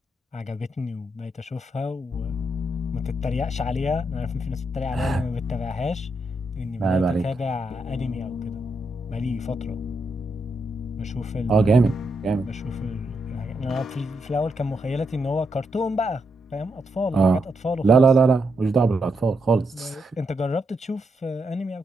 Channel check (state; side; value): normal; both; correlation 0.82